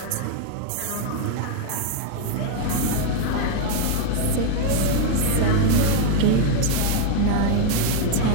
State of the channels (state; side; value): different; both; correlation 0.00